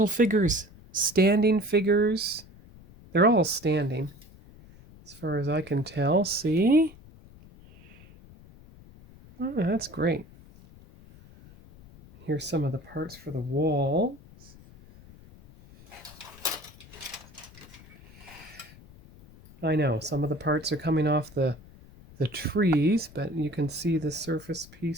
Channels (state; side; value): noise; left; rumble, 22 dB below the sound